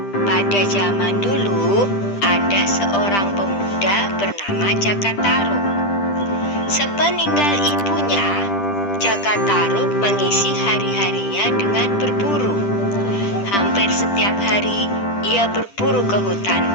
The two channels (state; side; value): late; right; 10 ms